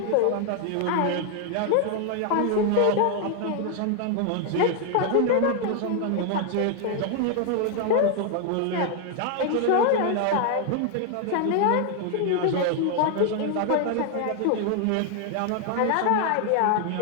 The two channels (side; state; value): both; different; correlation 0.00